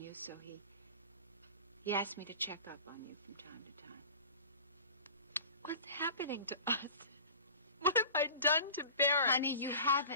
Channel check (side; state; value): both; inverted; correlation -0.38